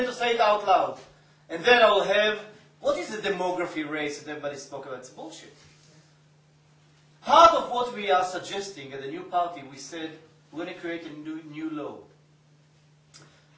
to say it out loud. And then I will have, what is the demography race that everybody spoke about? It's bullshit. Part of what we are suggesting at the new party, we said we're going to create a new law.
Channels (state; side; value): identical; both; correlation 1.00